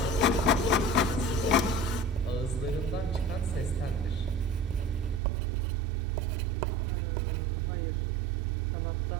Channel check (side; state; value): left; drops out; at 5.2 s